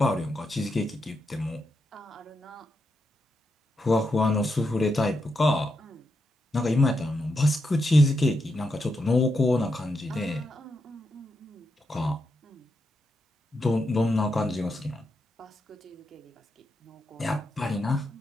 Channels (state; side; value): normal; both; correlation 0.84